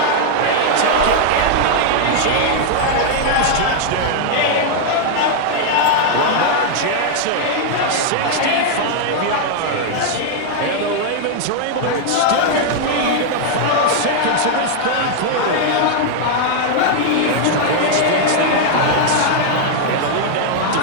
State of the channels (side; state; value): both; different; correlation 0.00